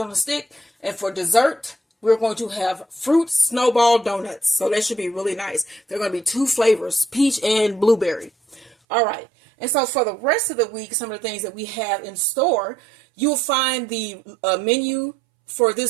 on a stick. And for dessert, we're going to have fruit snowball donuts. So that should be really nice. They're going to be 2 flavors, peach and blueberry. All right. And so for the rest of the week, some of the things that we have in store, you'll find the menu for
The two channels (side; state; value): left; drops out; at 8.8 s